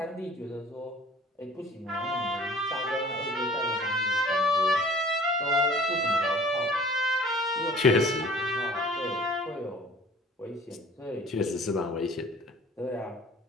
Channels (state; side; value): normal; both; correlation 0.49